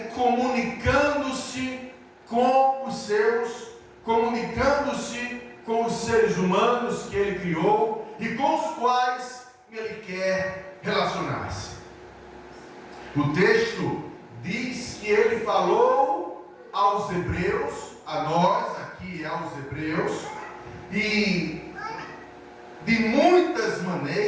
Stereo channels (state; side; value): identical; both; correlation 1.00